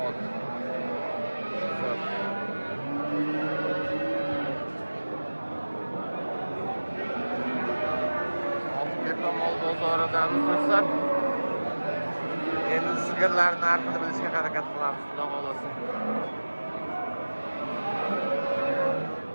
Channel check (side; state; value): both; inverted; correlation -1.00